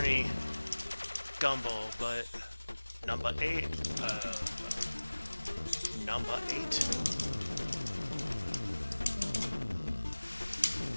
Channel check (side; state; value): both; inverted; correlation -1.00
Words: Gumble, but number 8. Number 8.